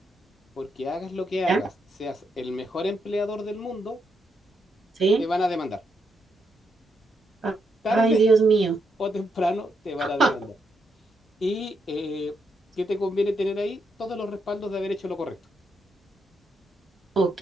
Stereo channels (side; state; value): both; normal; correlation 0.80